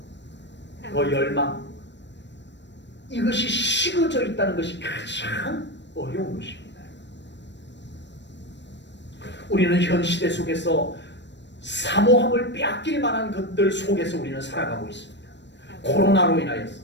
그 열망, 이것이 식어져 있다는 것이 가장 어려운 것입니다. 우리는 현 시대 속에서 사모함을 빼앗길 만한 것들 속에서 우리는 살아가고 있습니다. 코로나로 인하여서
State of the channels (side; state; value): right; late; 0.52 ms